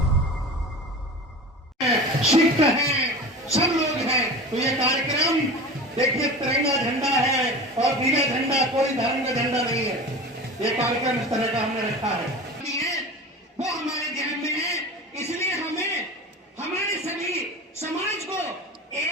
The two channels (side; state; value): both; normal; correlation 0.33